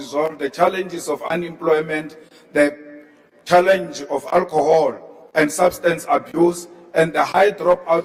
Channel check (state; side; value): identical; both; correlation 1.00